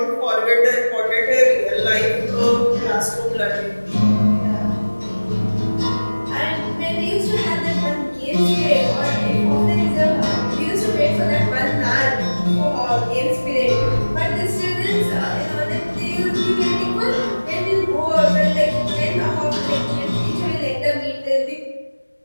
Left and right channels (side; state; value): both; inverted; correlation -1.00